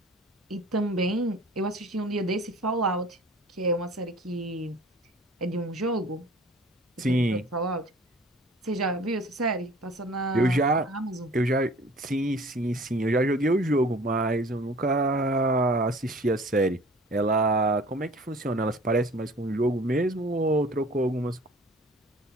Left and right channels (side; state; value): both; normal; correlation 0.47